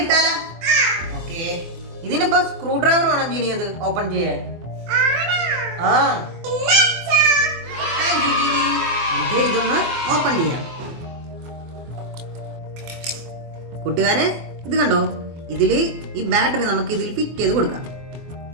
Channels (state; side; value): late; left; 24 ms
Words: ഇട്ടാലോ? ഓക്കെ. ഇതിനിപ്പോ സ്ക്രൂ ഡ്രൈവർ വേണം ജീനി അത് ഓപ്പൺ ചെയ്യാൻ. ഇതൊന്ന് ഓപ്പൺ ചെയ്യാം. കൂട്ടുകാരെ, ഇത് കണ്ടോ, ഇതില് ഈ ബാറ്ററി നമുക്ക് ഇതിൽ ഫിറ്റ് ചെയ്ത് കൊടുക്കാം.